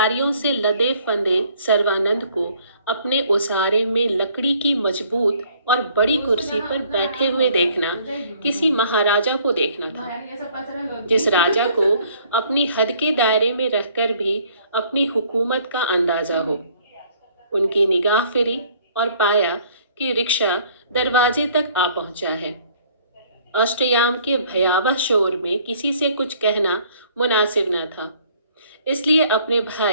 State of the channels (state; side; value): inverted; both; correlation -0.59